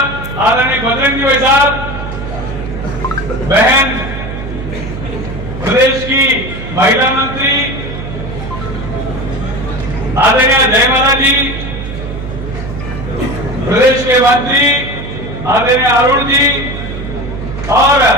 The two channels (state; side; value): noise; right; hum, 8 dB below the sound